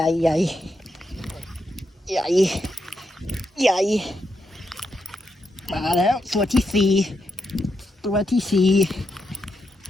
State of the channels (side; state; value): both; normal; correlation 0.83